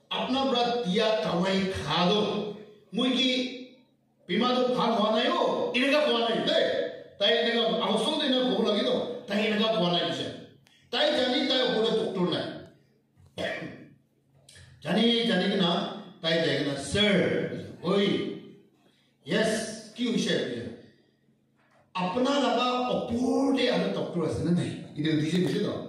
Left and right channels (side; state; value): both; identical; correlation 1.00